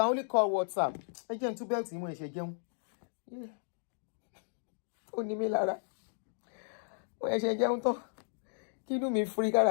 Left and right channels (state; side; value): silent; right; digital silence